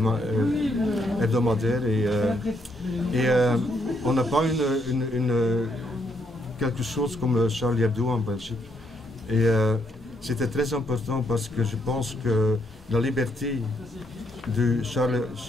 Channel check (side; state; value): both; normal; correlation 0.75